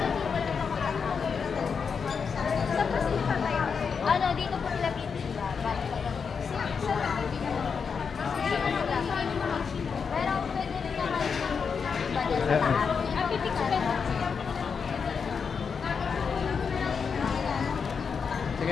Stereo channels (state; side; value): quieter; right; 5.9 dB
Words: Saan po sila tayo? Ano, dito po sila pipili. Pero pwede rin naman iba dyan sa taas. Ang pipicture mo.